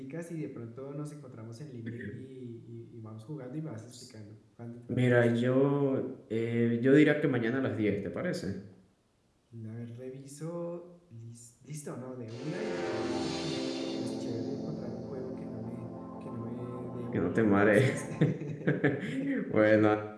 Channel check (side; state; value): both; identical; correlation 1.00